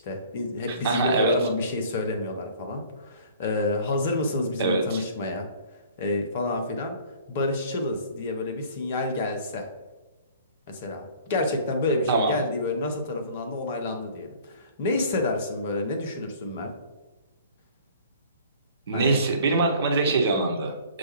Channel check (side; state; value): both; inverted; correlation -0.50